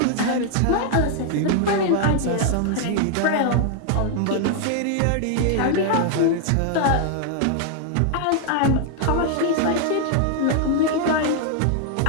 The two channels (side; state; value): both; different; correlation 0.00